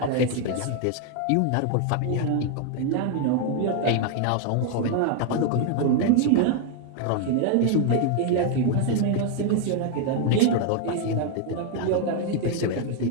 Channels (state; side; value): different; both; correlation 0.01